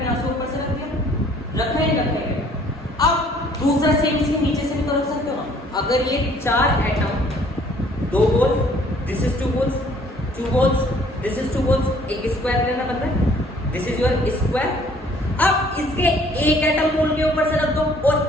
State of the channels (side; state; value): both; normal; correlation 0.58